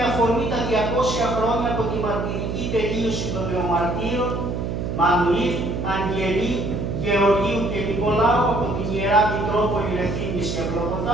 αφορμή τα 200 χρόνια από τη μαρτυρική τελείωση των νεομαρτύρων Μανουήλ, Αγγελή, Γεωργίου και Νικολάου από την Ιερά Μητρόπολη Ρεθύμνης και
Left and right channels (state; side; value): noise; right; hum, 3 dB below the sound